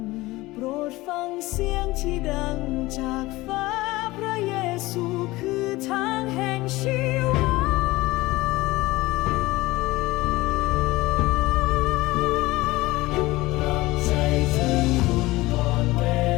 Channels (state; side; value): quieter; right; 19.8 dB